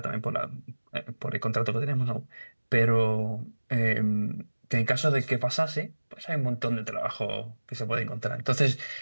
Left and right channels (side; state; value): both; inverted; correlation -1.00